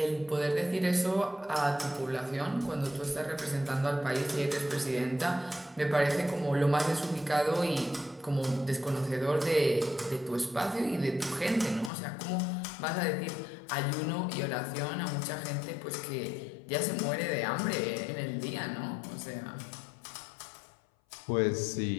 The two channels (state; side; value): drops out; right; at 11.9 s